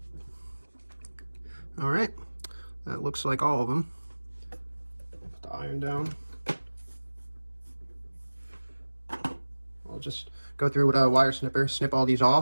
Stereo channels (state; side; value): inverted; both; correlation -1.00